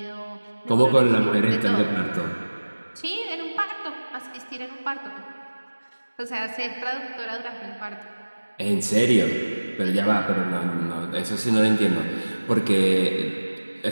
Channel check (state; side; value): inverted; both; correlation -1.00